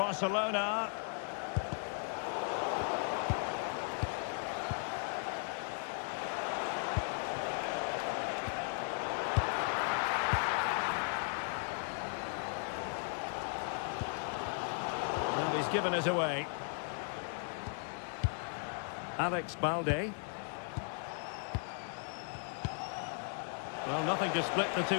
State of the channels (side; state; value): right; silent; 53 dB below the other